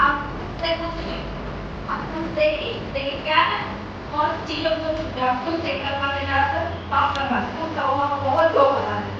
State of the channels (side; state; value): both; identical; correlation 1.00